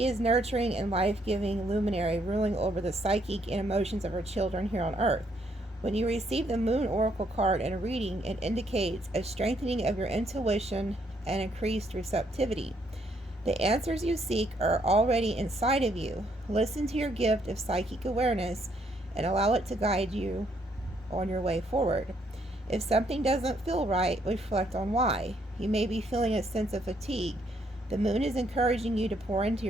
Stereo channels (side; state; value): both; normal; correlation 0.71